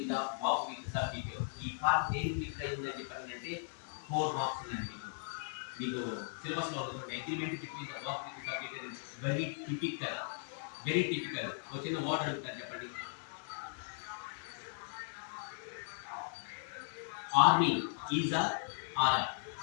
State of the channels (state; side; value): silent; right; digital silence